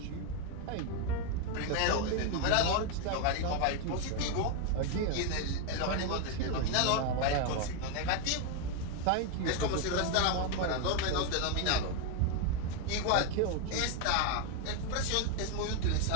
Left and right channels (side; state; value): both; different; correlation 0.01